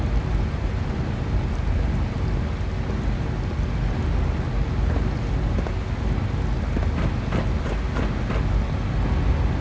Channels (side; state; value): both; identical; correlation 1.00